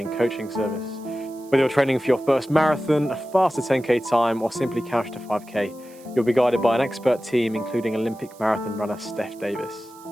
coaching service. Whether you're training for your first marathon, a faster 10k time, or simply couch to 5k, you'll be guided by an expert team, including Olympic marathon runner Steph Davis.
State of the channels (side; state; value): right; noise; hiss, 25 dB below the sound